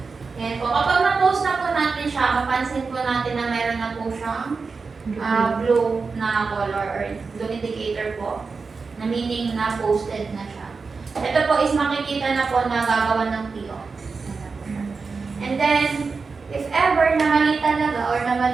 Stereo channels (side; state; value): left; quieter; 4.6 dB